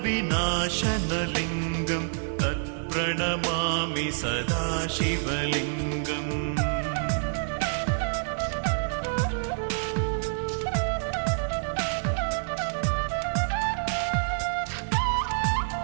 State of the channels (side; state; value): left; silent; digital silence